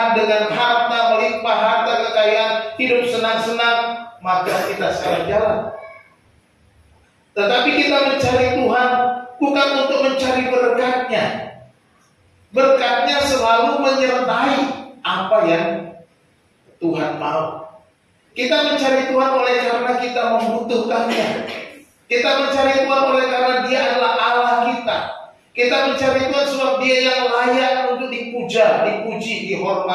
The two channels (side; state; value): both; identical; correlation 1.00